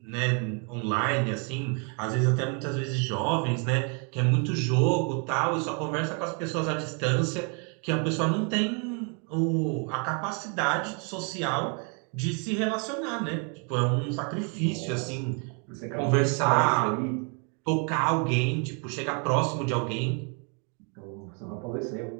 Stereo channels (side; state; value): left; quieter; 37.4 dB